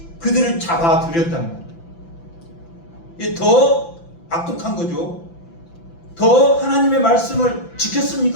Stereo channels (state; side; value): late; right; 5.9 ms